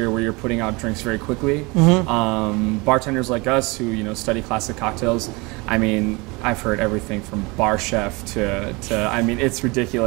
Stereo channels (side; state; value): left; quieter; 26.2 dB